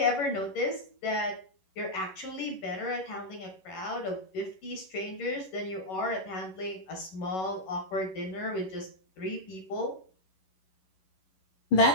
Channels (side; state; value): right; late; 11 ms